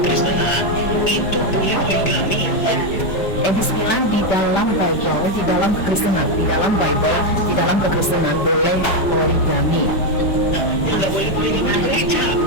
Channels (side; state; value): right; late; 5.1 ms